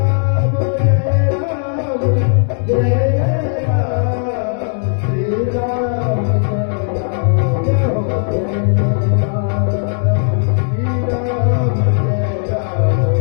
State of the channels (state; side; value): silent; right; 66 dB below the other